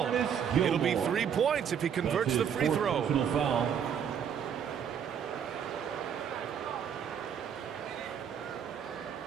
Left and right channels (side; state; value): left; quieter; 8.1 dB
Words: It'll be 3 points if he converts the free throw. Foul.